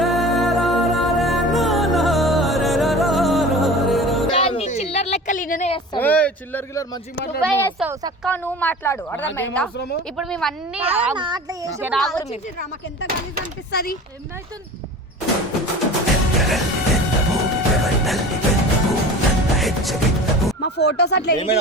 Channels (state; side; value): normal; both; correlation 0.37